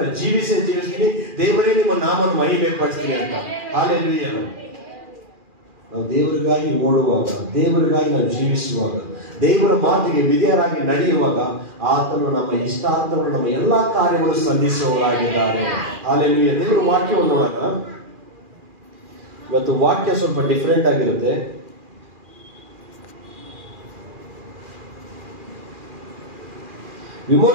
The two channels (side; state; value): left; late; 2.4 ms